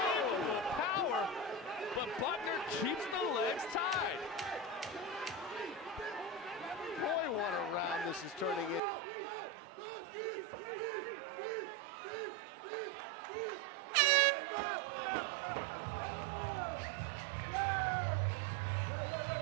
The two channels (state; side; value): drops out; left; at 8.8 s